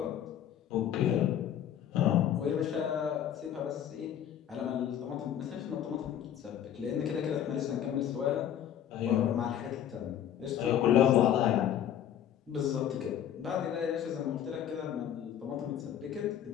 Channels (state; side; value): quieter; right; 10.1 dB